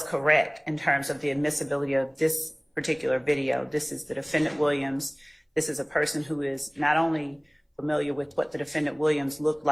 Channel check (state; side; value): identical; both; correlation 1.00